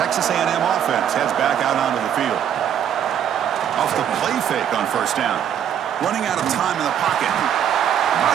A&M offense heads back out onto the field. Off the play fake on first down. Running out of time in the pocket.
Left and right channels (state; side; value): quieter; left; 9.3 dB